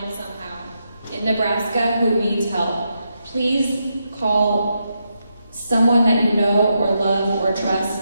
somehow in Nebraska who needs help. Please call someone that you know or love or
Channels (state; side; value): inverted; both; correlation -0.83